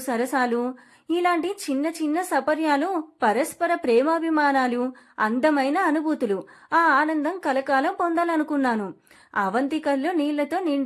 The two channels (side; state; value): both; identical; correlation 1.00